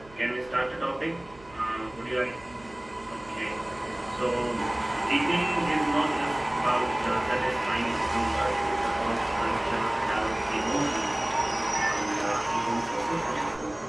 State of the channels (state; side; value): noise; right; hum, 23 dB below the sound